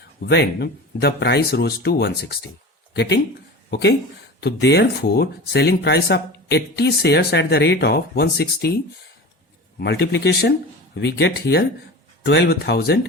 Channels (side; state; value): both; normal; correlation 0.33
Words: when the price rose to 160, getting okay. तो therefore selling price of 80 shares at the rate of 160 multiplication we get here